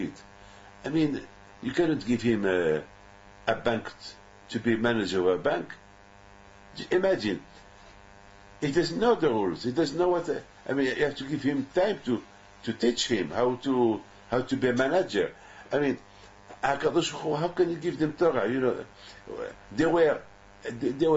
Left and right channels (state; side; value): identical; both; correlation 1.00